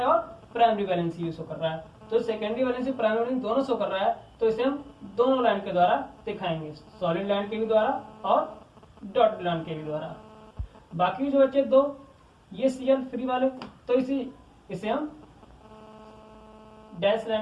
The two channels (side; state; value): both; identical; correlation 1.00